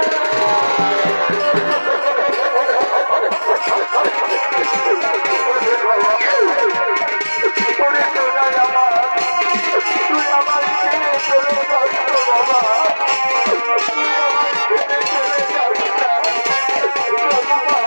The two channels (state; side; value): inverted; both; correlation -1.00